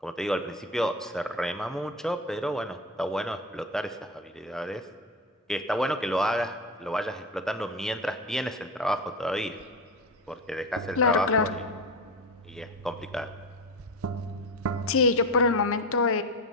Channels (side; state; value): both; normal; correlation 0.22